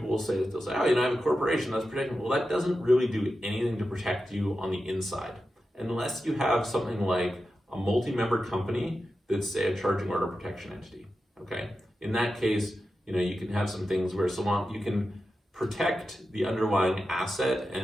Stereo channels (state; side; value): normal; both; correlation 0.91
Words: will say is they'll say, oh, you know, I have a corporation that's protecting me. Well, that doesn't really do anything to protect you on the inside, unless you have something like a multi-member company that's, say, a charging order protection entity. Okay, in that case, you know, you can have some things where you can protect the underlying asset